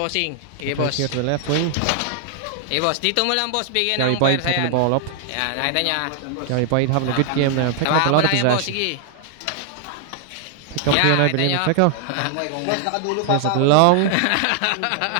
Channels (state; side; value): different; both; correlation 0.00